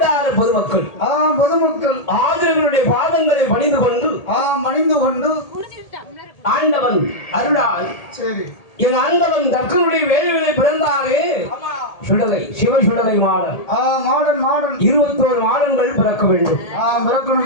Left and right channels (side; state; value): right; late; 1.8 ms